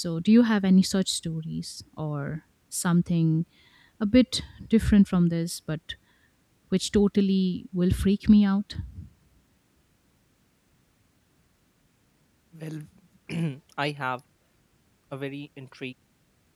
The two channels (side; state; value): both; identical; correlation 1.00